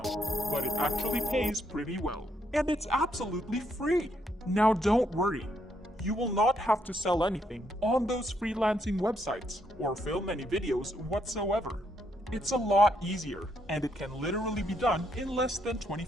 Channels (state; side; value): normal; both; correlation 0.75